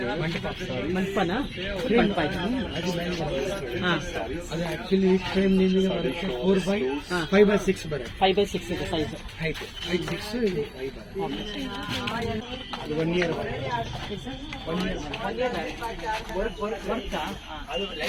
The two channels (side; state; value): both; identical; correlation 1.00